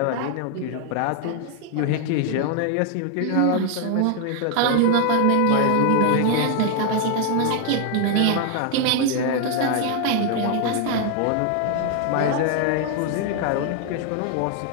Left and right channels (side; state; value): both; different; correlation 0.00